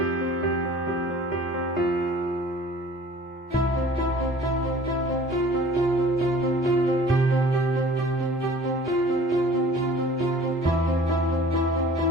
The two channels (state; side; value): normal; both; correlation 0.47